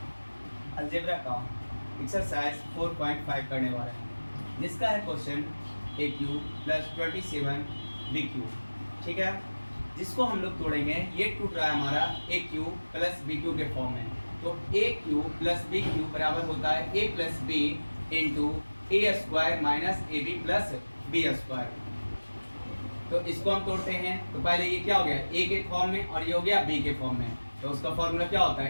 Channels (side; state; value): both; inverted; correlation -1.00